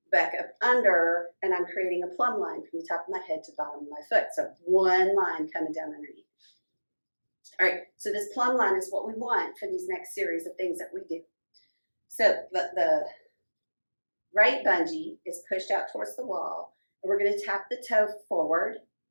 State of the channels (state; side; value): inverted; both; correlation -1.00